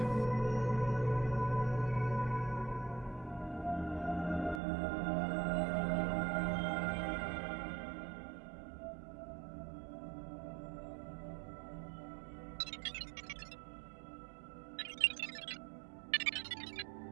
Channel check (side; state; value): left; drops out; at 4.6 s